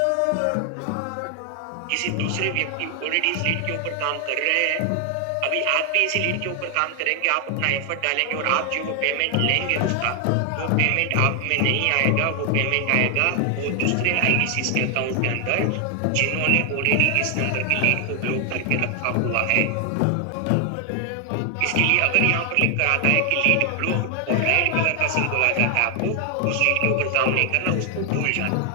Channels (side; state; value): both; different; correlation 0.00